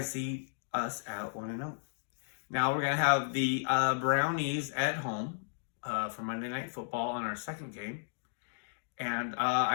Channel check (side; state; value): right; silent; digital silence